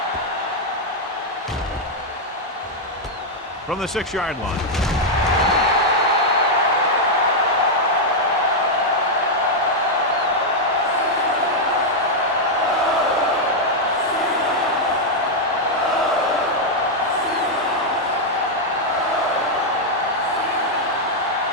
From the 6-yard line.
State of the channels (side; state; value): both; normal; correlation -0.02